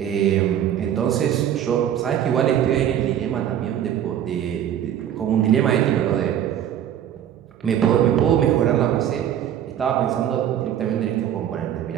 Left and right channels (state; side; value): quieter; left; 10.3 dB